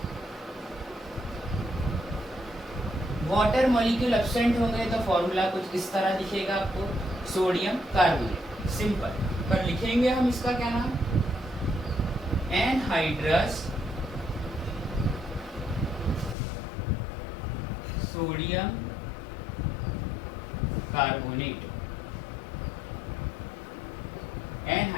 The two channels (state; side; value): drops out; right; at 16.4 s